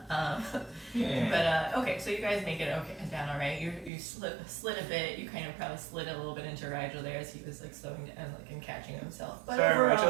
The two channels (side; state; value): left; drops out; at 3.9 s